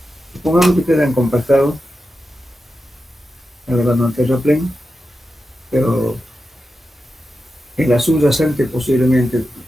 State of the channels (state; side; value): normal; both; correlation 0.90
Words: Supongamos que ustedes han compactado, agarrando un terraplén, pero en la subyacente posiblemente,